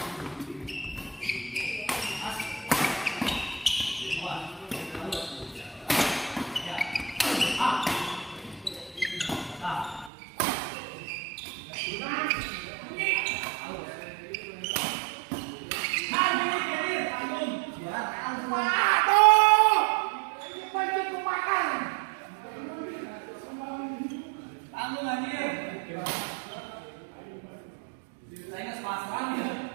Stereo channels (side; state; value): left; drops out; at 10.1 s